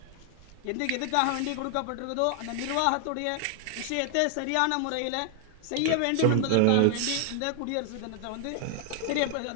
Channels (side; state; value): both; different; correlation 0.00